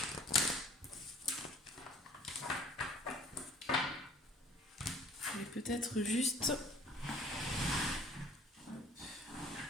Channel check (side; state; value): both; normal; correlation 0.53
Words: ? Peut-être juste